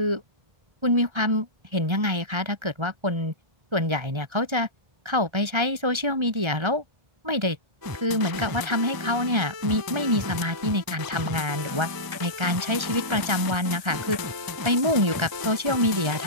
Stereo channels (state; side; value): late; left; 1.3 ms